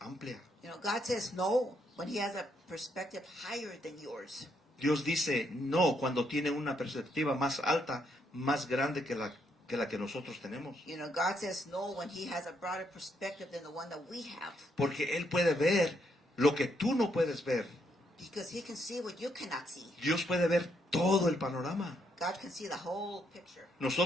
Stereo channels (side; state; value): both; normal; correlation 0.75